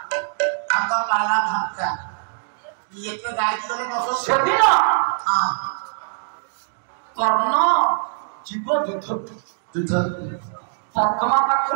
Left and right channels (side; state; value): left; silent; digital silence